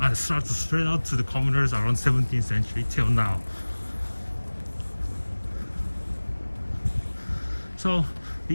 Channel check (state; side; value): inverted; both; correlation -1.00